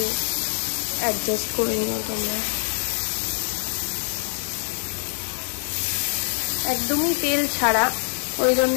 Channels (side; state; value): right; silent; 62 dB below the other